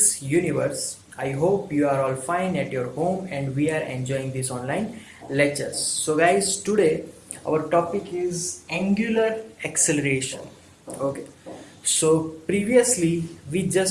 Universe. I hope you are all fine at your home and we are enjoying these online lectures. So guys, today our topic is angular acceleration. Okay. So previously we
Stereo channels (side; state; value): both; identical; correlation 1.00